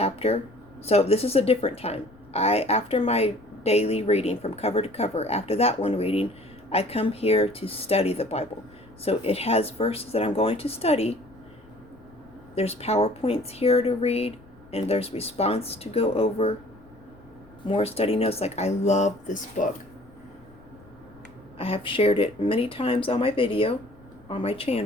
So this is a different time. After my daily reading from cover to cover, after that one reading, I come here to study the Bible. So it has verses that I'm going to study. There's PowerPoints here to read, and there's response to go over. More study notes. Like, I love this book. I have shared it many times on my video, on my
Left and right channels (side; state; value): left; noise; rumble, 25 dB below the sound